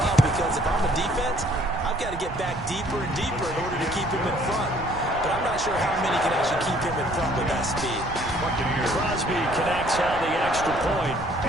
because if I'm a defense, I've got to get back deeper and deeper in order to keep him in front. But I'm not sure how many can actually keep him in front with that speed. Crosby connects on the extra point,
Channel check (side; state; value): right; noise; rumble, 12 dB below the sound